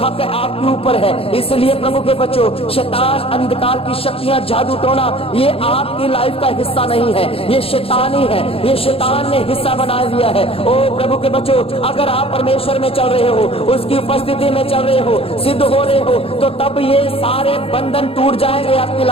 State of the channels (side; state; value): right; late; 0.27 ms